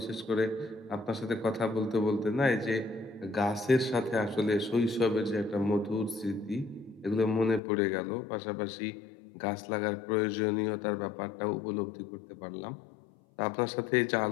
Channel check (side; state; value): right; drops out; at 7.6 s